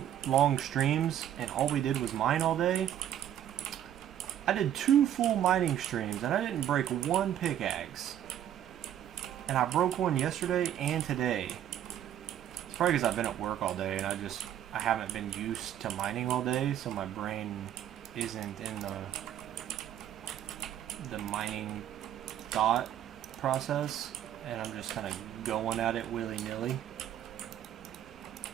long streams and all we did was mine all day, I did 2 full mining streams and I didn't break one pickaxe. And I broke one yesterday and today. It's probably because I've been at work all day and I haven't been used to mining all day, so my brain isn't in the mining thought process, and I'm just kind of going at it willy-nilly,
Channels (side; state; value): left; quieter; 10.8 dB